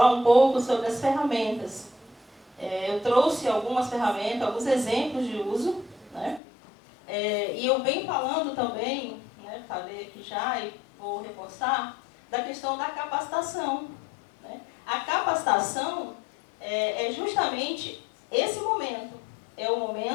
um pouco sobre as ferramentas. Eu trouxe algumas ferramentas, alguns exemplos de uso, né? E eu venho falando também, né, falei aqui já, e vou reforçar, da questão da capacitação, né? A capacitação é justamente esse momento, é o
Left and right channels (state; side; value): drops out; right; at 6.4 s